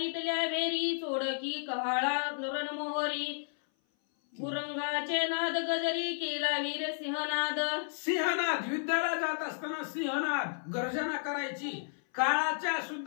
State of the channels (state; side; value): silent; right; 56 dB below the other